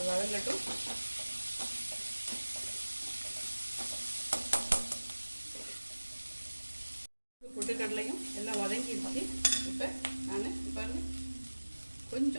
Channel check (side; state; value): both; inverted; correlation -1.00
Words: வதங்கட்டும். பொட்டுக்கடலையும் எல்லாம் வதங்கிடுச்சு. இப்போ நான் பாருங்க